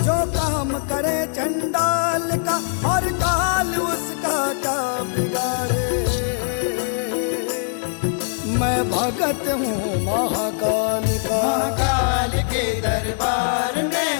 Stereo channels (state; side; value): silent; right; digital silence